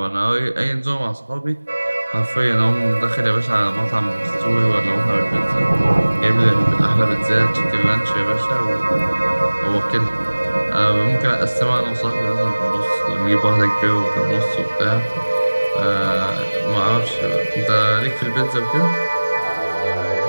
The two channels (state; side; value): inverted; both; correlation -1.00